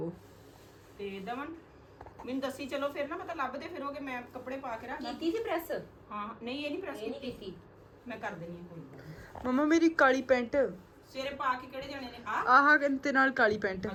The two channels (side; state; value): both; identical; correlation 1.00